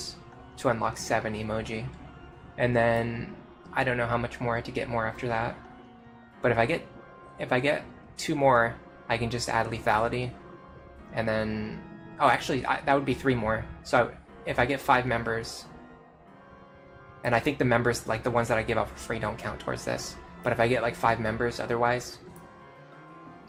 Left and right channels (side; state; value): both; identical; correlation 1.00